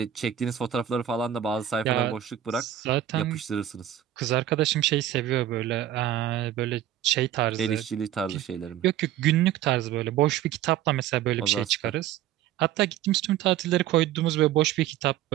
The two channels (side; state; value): left; quieter; 11.7 dB